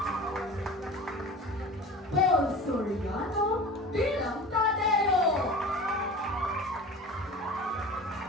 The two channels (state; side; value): normal; both; correlation 0.37